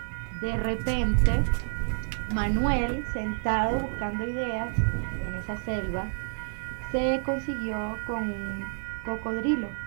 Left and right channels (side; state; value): left; silent; digital silence